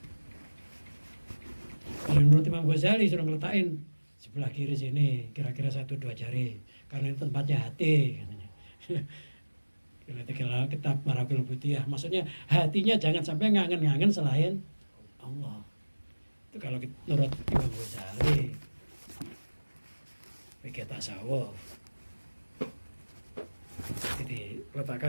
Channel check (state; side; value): inverted; both; correlation -1.00